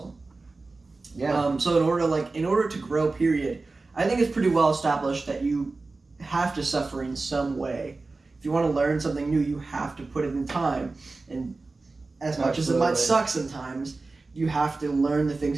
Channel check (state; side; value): quieter; left; 3.6 dB